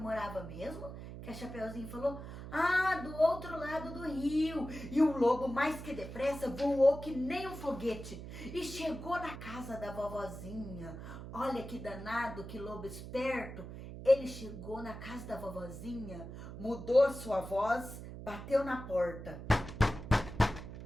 mesmo? Que a Chapeuzinho falou, do outro lado do rio. E o lobo, mais que depressa, voou que nem um foguete e chegou na casa da vovozinha. Olha que danado, que lobo esperto. Ele chegou na casa da vovozinha, mudou sua voz, bateu na porta.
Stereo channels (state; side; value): noise; right; hum, 10 dB below the sound